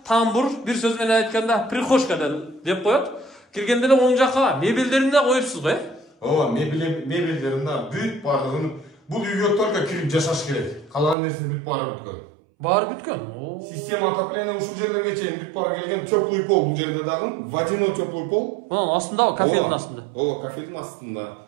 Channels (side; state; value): left; drops out; at 11.2 s